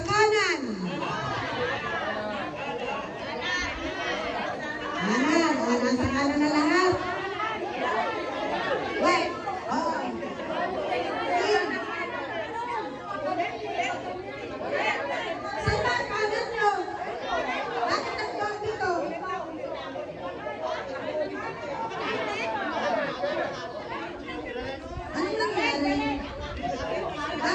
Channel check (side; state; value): both; identical; correlation 1.00